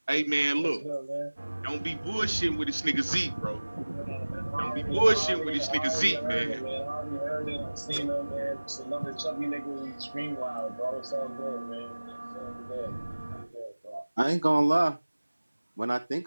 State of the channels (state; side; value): inverted; both; correlation -1.00